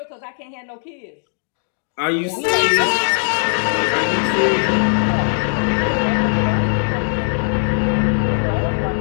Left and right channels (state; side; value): silent; right; digital silence